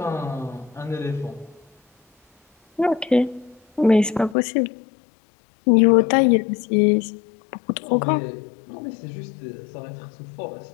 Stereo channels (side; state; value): right; drops out; at 4.4 s